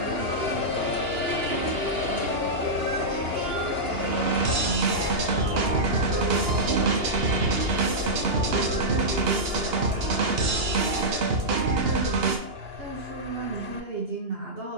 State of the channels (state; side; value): late; left; 2.9 ms